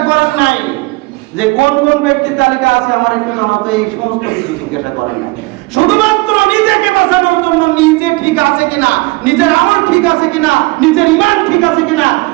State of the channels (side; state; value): left; quieter; 24.1 dB